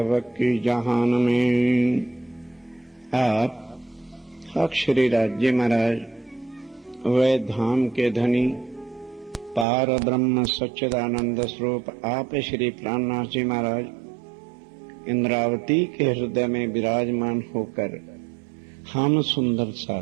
जहान में आप अक्षरी राज्य महाराज, वह धाम के धनी पार ब्रह्म सच्चिदानंद स्वरूप आप श्री प्राणनाथ जी महाराज इंद्रावती के हृदय में विराजमान होकर हम सुंदर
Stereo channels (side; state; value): left; drops out; at 9.7 s